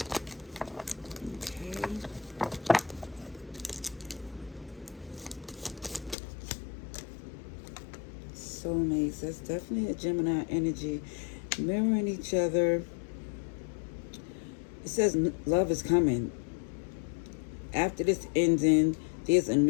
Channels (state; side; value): drops out; right; at 6.2 s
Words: Soulmates, that's definitely a Gemini energy, mirroring each other. It says love is coming. After this ending, there's a